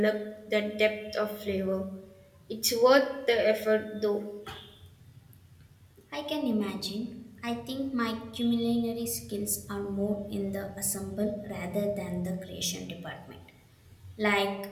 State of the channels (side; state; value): both; identical; correlation 1.00